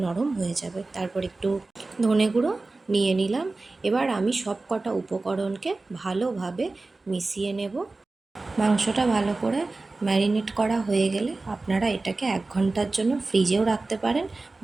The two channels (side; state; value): left; quieter; 3.4 dB